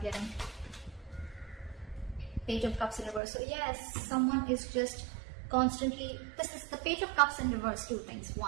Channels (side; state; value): left; drops out; at 3.2 s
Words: Page of Cups in reverse. So yes, someone is just constantly, this is the Page of Cups in reverse. Two things.